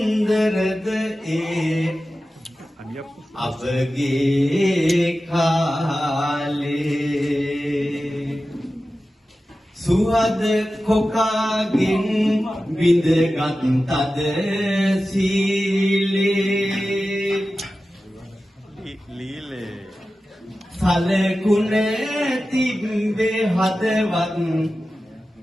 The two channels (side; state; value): both; normal; correlation 0.94